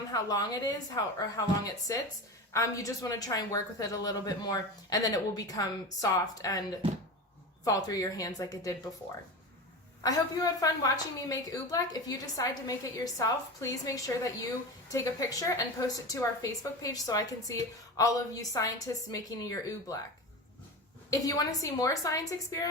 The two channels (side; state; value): both; normal; correlation 0.26